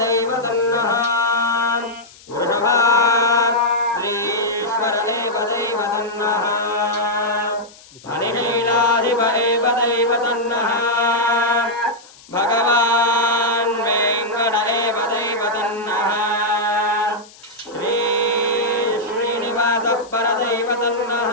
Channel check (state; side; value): noise; left; hiss, 23 dB below the sound